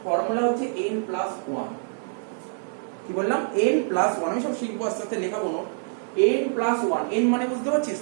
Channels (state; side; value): silent; left; 61 dB below the other